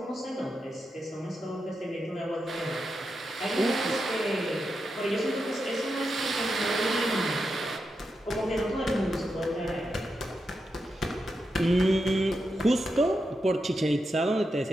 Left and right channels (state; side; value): normal; both; correlation 0.87